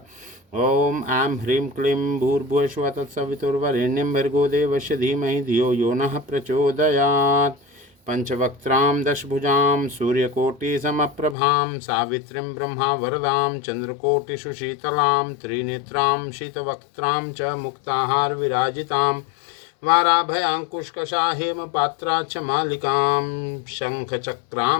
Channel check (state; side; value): drops out; right; at 11.4 s